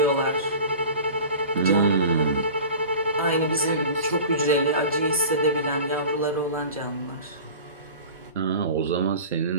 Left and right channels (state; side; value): inverted; both; correlation -0.37